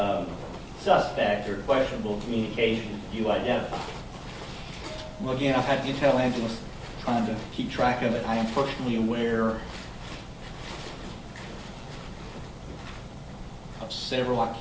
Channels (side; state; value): both; identical; correlation 1.00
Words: suspect or questionable communications do you identify? Well, again, I've had intel analysts trying to keep track of it. I am personally aware of several. I